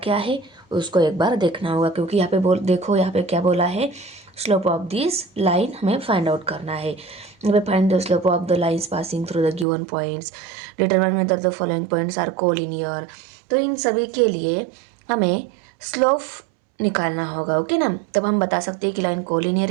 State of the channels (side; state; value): left; drops out; at 9.7 s